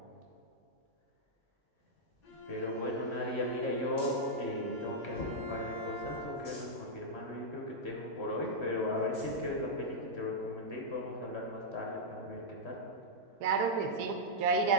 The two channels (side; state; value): both; normal; correlation -0.07